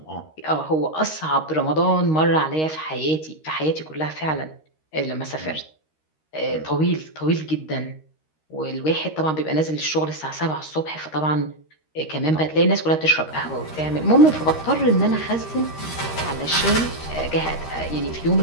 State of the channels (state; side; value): late; right; 13 ms